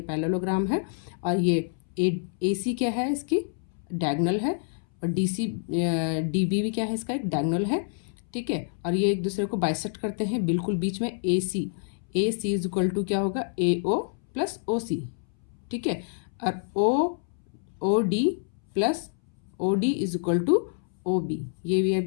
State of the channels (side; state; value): right; silent; 60 dB below the other